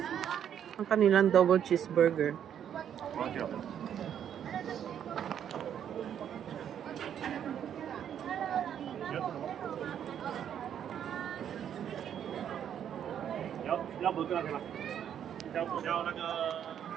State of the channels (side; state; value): left; quieter; 9.3 dB